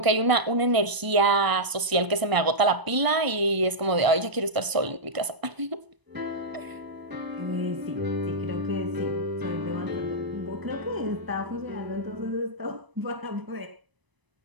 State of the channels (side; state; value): left; late; 1.0 ms